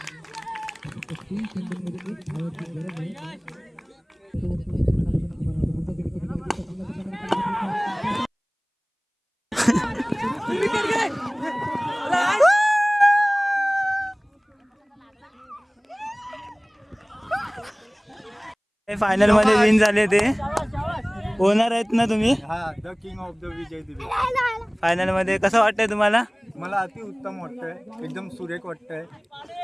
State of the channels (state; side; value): identical; both; correlation 1.00